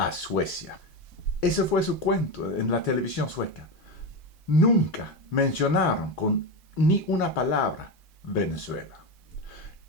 Suecia. Ese fue su cuento en la televisión sueca. Nunca mencionaron con ni una palabra Venezuela.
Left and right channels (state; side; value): normal; both; correlation 0.16